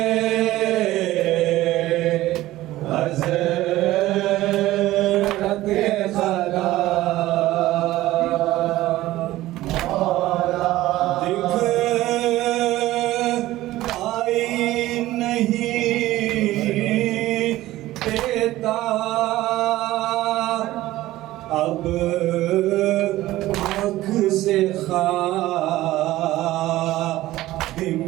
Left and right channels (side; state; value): left; quieter; 16.2 dB